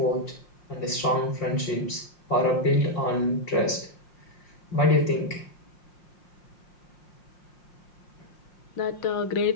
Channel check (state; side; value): late; right; 5.6 ms